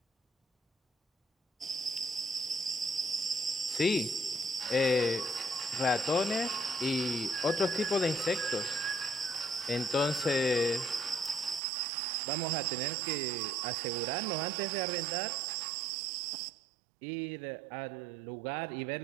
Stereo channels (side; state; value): left; drops out; at 11.6 s